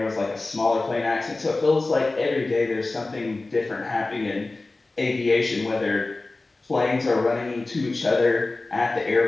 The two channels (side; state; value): right; quieter; 3.2 dB